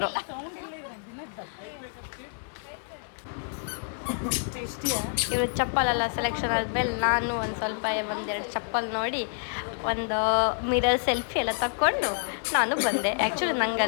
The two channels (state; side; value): silent; right; digital silence